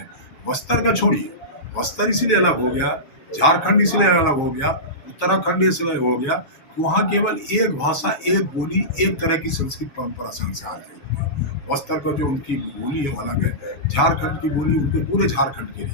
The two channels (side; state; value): right; late; 7.2 ms